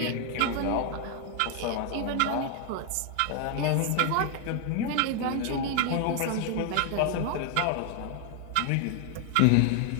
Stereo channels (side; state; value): both; different; correlation 0.00